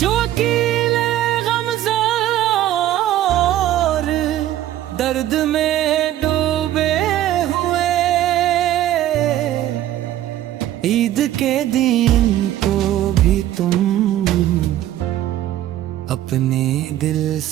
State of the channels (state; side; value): quieter; left; 13.1 dB